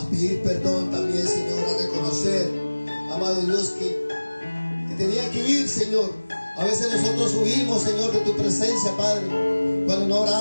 pedir perdón también, Señor, a reconocer, amado Dios, que tenía que huir, Señor. A veces nosotros huimos, Señor, de tu presencia, Padre, cuando no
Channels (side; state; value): both; inverted; correlation -1.00